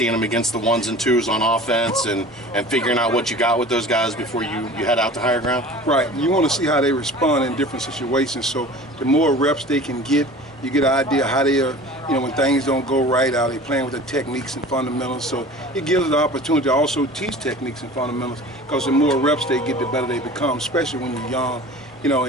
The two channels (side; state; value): both; normal; correlation 0.41